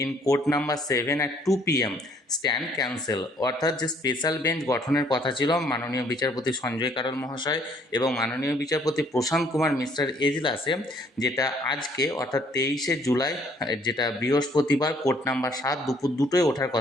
in court number 7 at 2 p.m. Stand cancel. অর্থাৎ যে স্পেশাল বেঞ্চ গঠনের কথা ছিল মাননীয় বিচারপতি সঞ্জয় কারোল মহাশয় এবং মাননীয় বিচারপতি প্রশান্ত কুমার মিশ্রের এজলাসে, যেটা আজকে অর্থাৎ 23শে জুলাই, যেটা বৃহস্পতিবার, কোর্ট নাম্বার 7 দুপুর 2টোয় ওঠার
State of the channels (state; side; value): normal; both; correlation 0.62